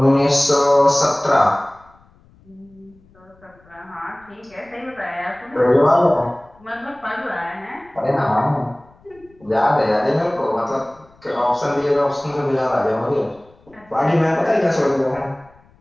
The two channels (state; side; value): noise; left; rumble, 29 dB below the sound